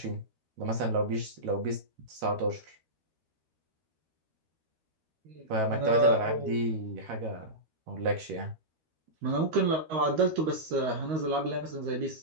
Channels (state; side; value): late; left; 13 ms